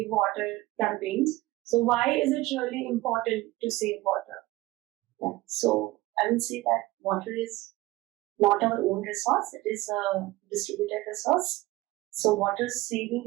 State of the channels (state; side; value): quieter; left; 19.0 dB